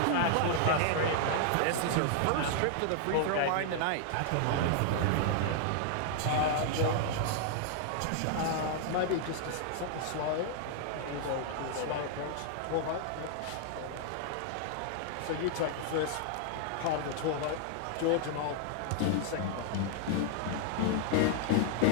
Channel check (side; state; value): both; different; correlation -0.01